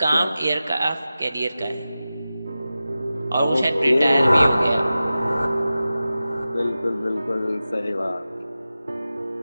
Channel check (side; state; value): both; inverted; correlation -0.94